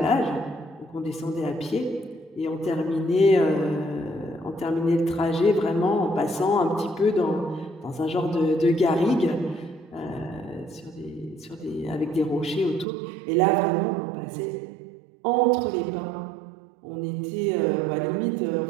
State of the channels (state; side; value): drops out; left; at 12.9 s